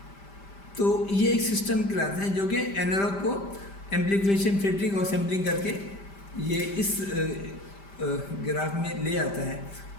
तो ये एक सिस्टम कहलाता है जो कि एनालॉग को एम्प्लीफिकेशन, फिल्टरिंग और सैम्पलिंग करके ये इस ग्राफ में ले आता है।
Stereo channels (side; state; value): right; late; 5.1 ms